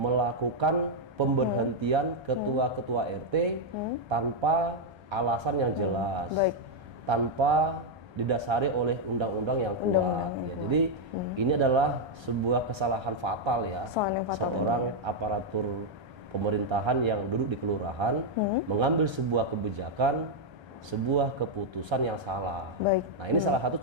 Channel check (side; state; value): left; late; 1.3 ms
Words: pemberhentian ketua-ketua RT tanpa alasan yang jelas, Baik. tanpa didasari oleh undang-undang yang kuat. Ya, jadi ini adalah sebuah kesalahan fatal ya. Seorang aparatur pemerintahan yang duduk di kelurahan mengambil sebuah kebijakan sebuah keputusan yang salah. Baik. Nah, ini salah satu